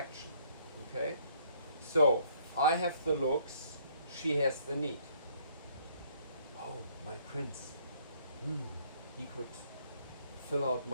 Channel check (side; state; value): both; inverted; correlation -0.64